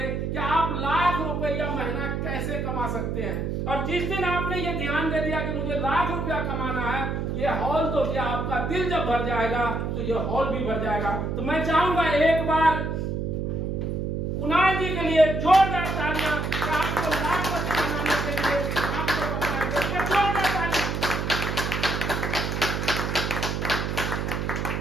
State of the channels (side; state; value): right; noise; hum, 2 dB below the sound